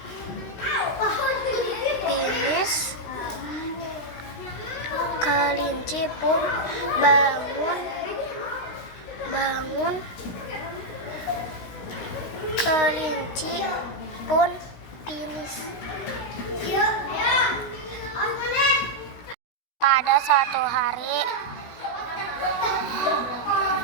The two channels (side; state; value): right; late; 16 ms